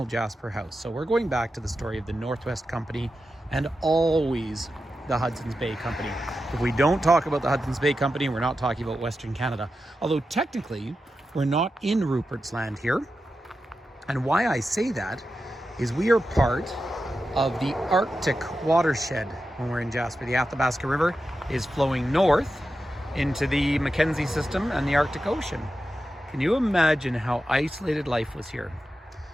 Jasper House. So we're going back to the story of the Northwest Company and always the Hudson's Bay Company. If we don't talk about the Hudson's Bay Company, we're not talking about Western Canada. Although technically, we're not in Rupert's Land here. And why I say that is we are part of the Arctic watershed when we're in Jasper. The Athabasca River is flowing north into the Mackenzie system and the Arctic Ocean. Can you imagine how isolated life was here?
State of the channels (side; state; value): both; normal; correlation 0.90